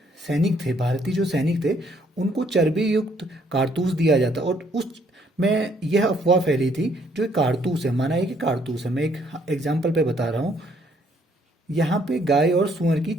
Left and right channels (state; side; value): normal; both; correlation 0.67